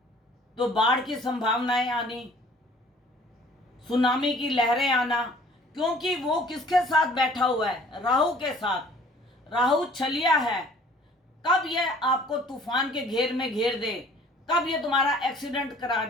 तो बाढ़ की संभावनाएं आनी, सुनामी की लहरें आना, क्योंकि वो किसके साथ बैठा हुआ है? राहु के साथ। राहु छलिया है। कब ये आपको तूफान के घेर में घेर दे, कब ये तुम्हारा एक्सीडेंट करा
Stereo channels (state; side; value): normal; both; correlation 0.53